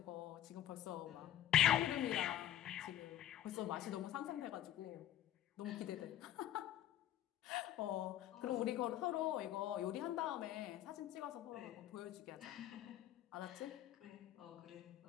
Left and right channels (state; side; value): quieter; right; 12.2 dB